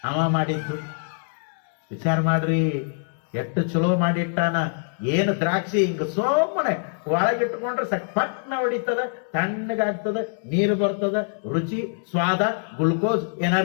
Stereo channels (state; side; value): silent; right; digital silence